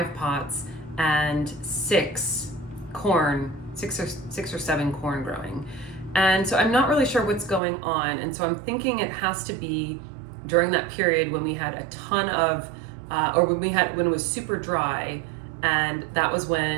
pots and 6 or 7 corn growing. And so I'm not really sure what's going on. And so I'm thinking it has to be during that period when we had a ton of, when it was super dry, and that was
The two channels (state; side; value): drops out; left; at 7.6 s